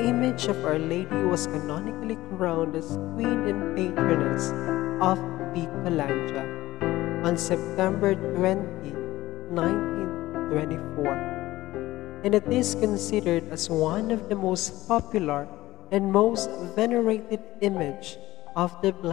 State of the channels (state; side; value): quieter; right; 16.9 dB